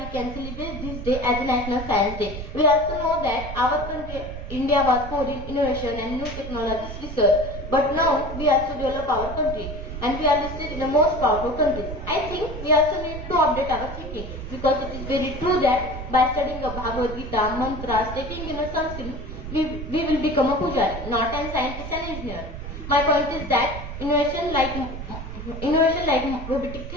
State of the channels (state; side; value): noise; right; rumble, 9 dB below the sound